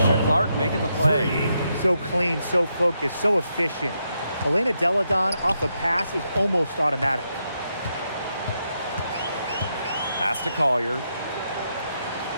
Clark making the play. So clean, so focused, so efficient. Elena Deladon off a pass is almost automatic. Pass to Collier.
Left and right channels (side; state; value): both; inverted; correlation -0.81